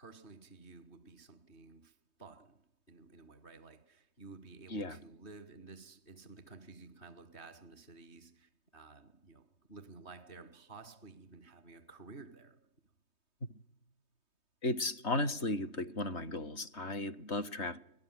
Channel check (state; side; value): late; right; 3.2 ms